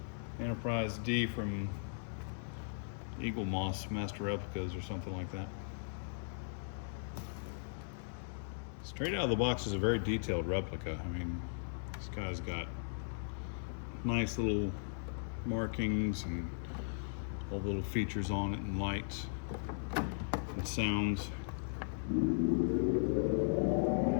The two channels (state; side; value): silent; right; 53 dB below the other